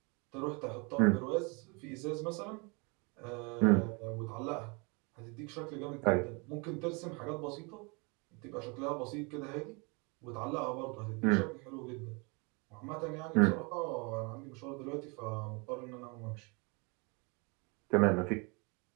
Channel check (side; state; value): left; quieter; 30.8 dB